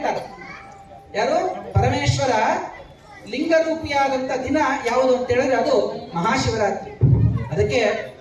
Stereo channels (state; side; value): identical; both; correlation 1.00